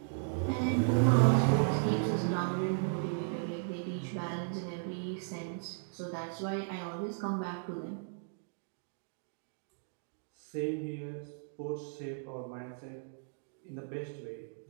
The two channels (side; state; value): left; silent; digital silence